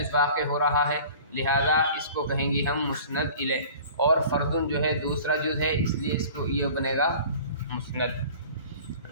واقع ہو رہا ہے، لہذا اس کو کہیں گے ہم مسند الیہ، اور فردن جو ہے دوسرا جز ہے، اس لیے اس کو یہ بنے گا مسند۔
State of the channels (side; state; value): both; inverted; correlation -0.44